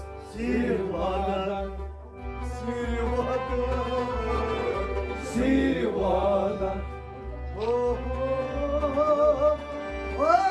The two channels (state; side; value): identical; both; correlation 1.00